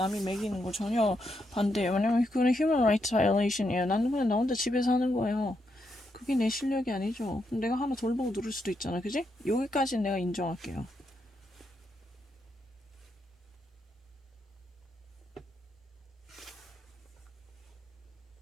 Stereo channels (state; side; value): normal; both; correlation 0.81